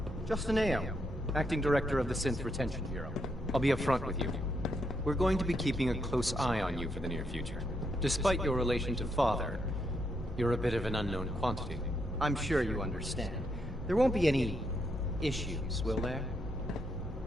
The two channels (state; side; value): normal; both; correlation 0.79